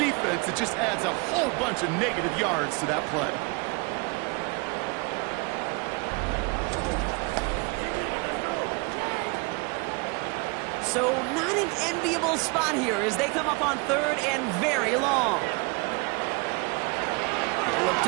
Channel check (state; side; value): quieter; left; 29.5 dB